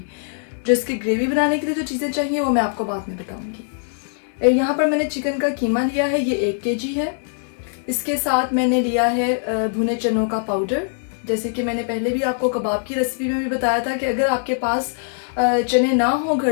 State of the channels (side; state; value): right; silent; digital silence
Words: जो इसकी ग्रेवी बनाने के लिए जो चीज़ें चाहिए वो मैं आपको बाद में बताऊँगी। यहाँ पर मैंने चिकन का कीमा लिया है, ये 1 kg है। इसके साथ मैंने लिया है भुने चनों का पाउडर। जैसे कि मैंने पहले भी आपको कबाब की रेसिपी में भी बताया था कि अगर आपके पास चने ना हो